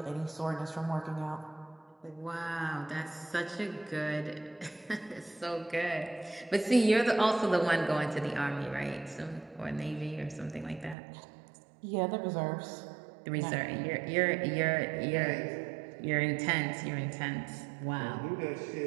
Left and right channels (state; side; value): drops out; left; at 11.0 s